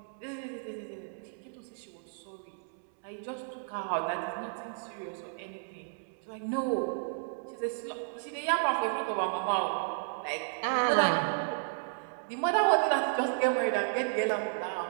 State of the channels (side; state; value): left; silent; digital silence